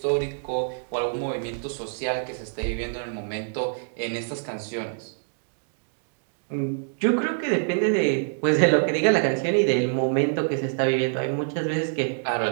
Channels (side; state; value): left; silent; digital silence